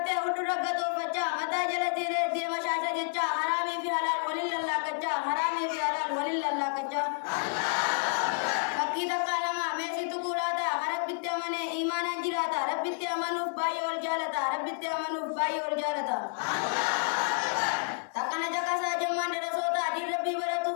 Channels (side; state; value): right; silent; digital silence